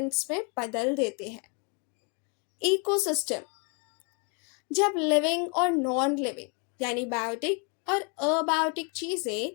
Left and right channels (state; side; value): quieter; right; 35.5 dB